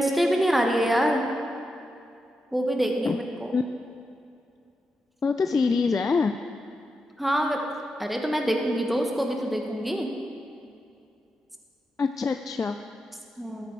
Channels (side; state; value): both; normal; correlation 0.87